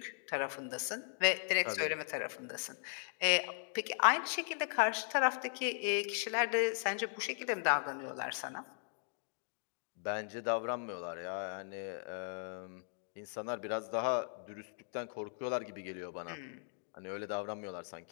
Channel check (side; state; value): right; silent; digital silence